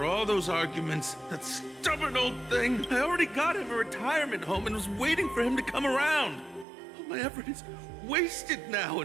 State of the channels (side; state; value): left; drops out; at 6.7 s